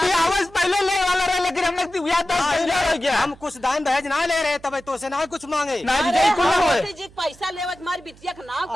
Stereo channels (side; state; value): right; noise; hum, 25 dB below the sound